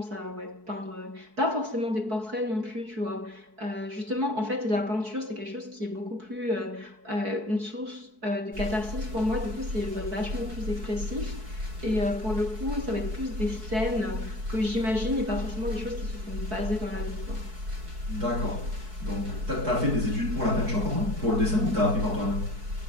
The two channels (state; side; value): late; left; 4.6 ms